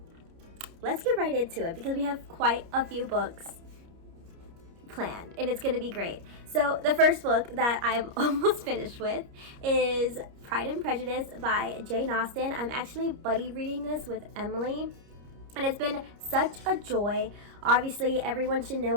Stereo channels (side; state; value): left; late; 30 ms